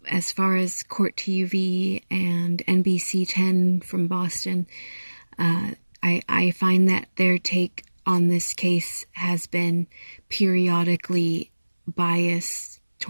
As far as Court TV and NBC 10 from Boston, I find that their take on this case has been periodically biased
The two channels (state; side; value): inverted; both; correlation -1.00